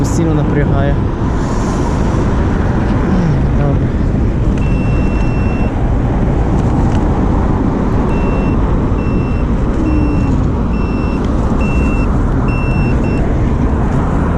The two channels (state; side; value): identical; both; correlation 1.00